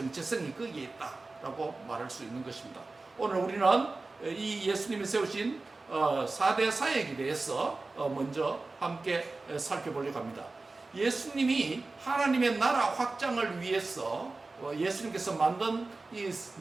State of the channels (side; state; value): left; quieter; 3.5 dB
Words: 거기에 있다라고 말할 수 있는 것입니다. 오늘 우리는 이 예수님이 세우신 4대 사역에 대해서 먼저 함께 살펴보려고 합니다. 예수님이 하나님의 나라 확장을 위해서 예수님께서 만든 이